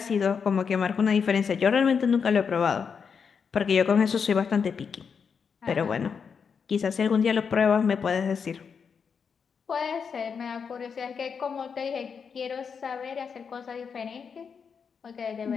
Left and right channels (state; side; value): quieter; right; 6.2 dB